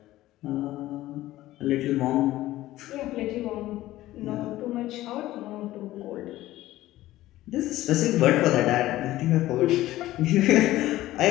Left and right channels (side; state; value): right; quieter; 15.7 dB